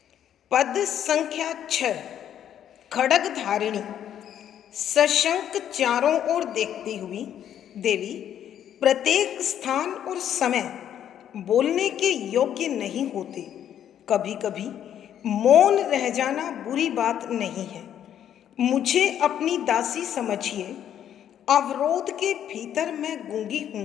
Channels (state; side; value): quieter; right; 10.1 dB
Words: पद संख्या 6, खड्ग धारिणी। सशंक चारों ओर देखती हुई देवी प्रत्येक स्थान और समय बोलने के योग्य नहीं होते। कभी कभी मौन रह जाना बुरी बात नहीं है। मुझे अपनी दासी समझिए। अवरोध के भीतर मैं गूंगी